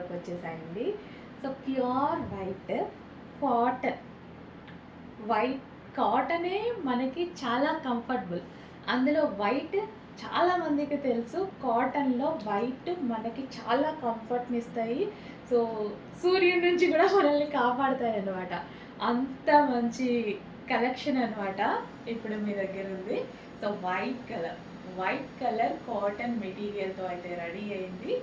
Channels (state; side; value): identical; both; correlation 1.00